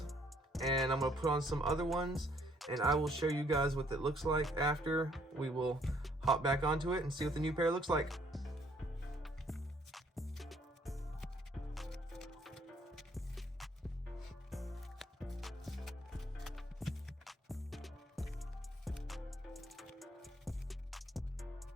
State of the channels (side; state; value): both; normal; correlation 0.65